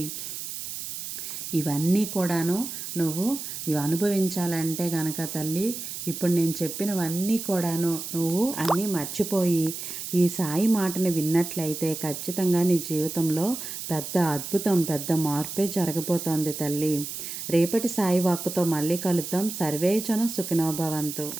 ఇవన్నీ కూడాను నువ్వు ఇవి అనుభవించాలంటే గనక తల్లి, ఇప్పుడు నేను చెప్పినవన్నీ కూడాను నువ్వు అన్నీ మర్చిపోయి ఈ సాయి మాటని విన్నట్లయితే ఖచ్చితంగా నీ జీవితంలో పెద్ద అద్భుతం, పెద్ద మార్పే జరగబోతోంది తల్లి. రేపటి సాయి వాక్కుతో మళ్ళీ కలుద్దాం. సర్వేజన సుఖినో భవంతు.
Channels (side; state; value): right; noise; hiss, 7 dB below the sound